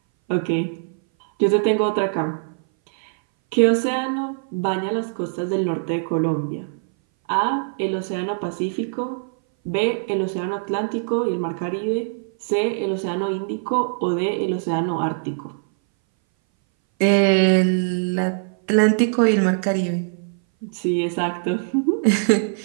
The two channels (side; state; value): left; silent; 60 dB below the other